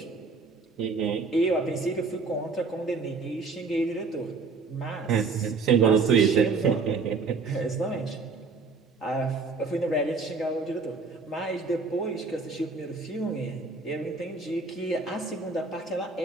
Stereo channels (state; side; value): quieter; left; 4.3 dB